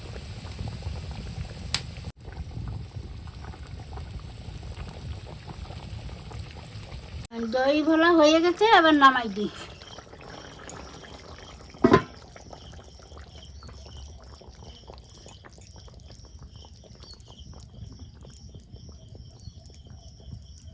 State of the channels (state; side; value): identical; both; correlation 1.00